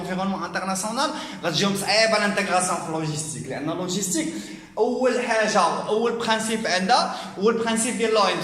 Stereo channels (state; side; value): identical; both; correlation 1.00